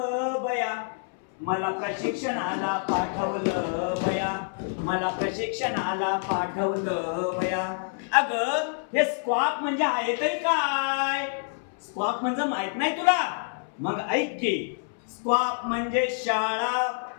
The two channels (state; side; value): silent; right; 60 dB below the other